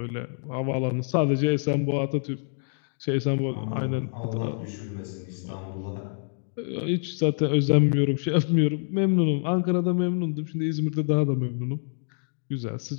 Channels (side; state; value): right; silent; digital silence